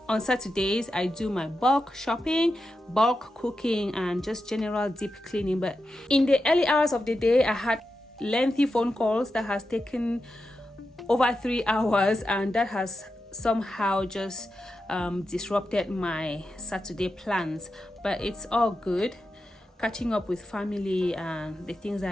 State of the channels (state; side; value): normal; both; correlation 0.89